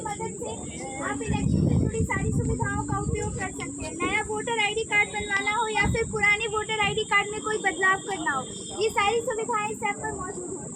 मदद से आप इलेक्शन से जुड़ी सारी सुविधाओं का उपयोग कर सकते हैं। नया वोटर आईडी कार्ड बनवाना हो या फिर पुराने वोटर आईडी कार्ड में कोई बदलाव करना हो, ये सारी सुविधाएं इस ऐप पर मौजूद हैं।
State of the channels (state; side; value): identical; both; correlation 1.00